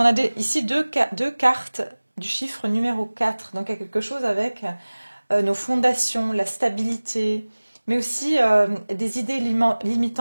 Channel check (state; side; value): inverted; both; correlation -1.00